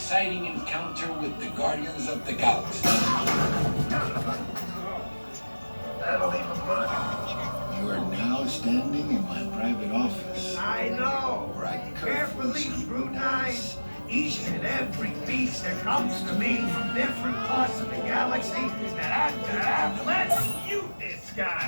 encounter with the Guardians of the Galaxy. That'll even fun. You are now standing in my private office. I know. Where I Carefully scrutinize each and every piece that comes to me from different parts of the galaxy, and let's mute this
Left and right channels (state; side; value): inverted; both; correlation -1.00